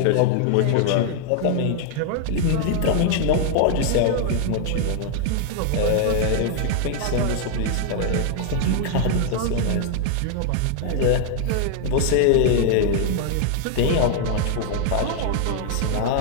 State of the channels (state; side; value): different; both; correlation 0.00